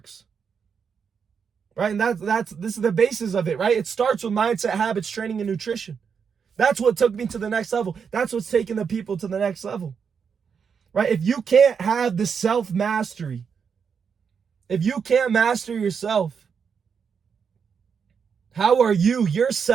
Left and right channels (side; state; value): left; quieter; 6.5 dB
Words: Right? And this is the basis of it, right? It starts with mindset, habits, training, and nutrition. That's what took me to the next level. That's what's taking the people to the next level. Right? If you can't have the self-mastery, if you can't master yourself, how are you,